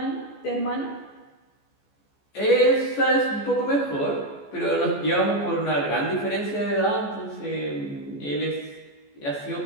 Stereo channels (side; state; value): right; late; 14 ms